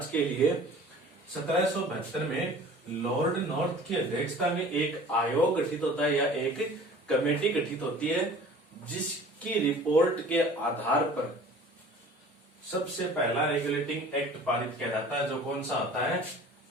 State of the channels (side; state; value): both; normal; correlation 0.46